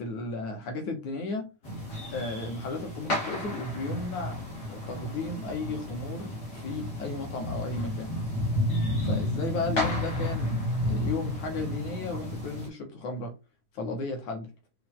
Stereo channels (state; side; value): late; right; 7.5 ms